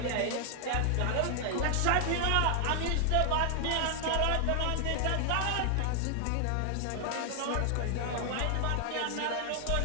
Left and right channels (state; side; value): different; both; correlation 0.00